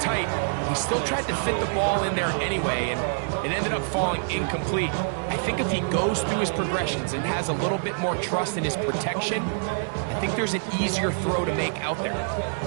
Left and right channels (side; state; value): left; silent; 59 dB below the other